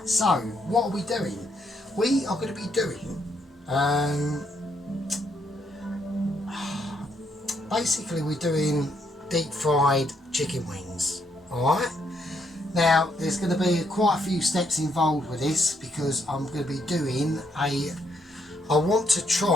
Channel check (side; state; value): both; normal; correlation 0.74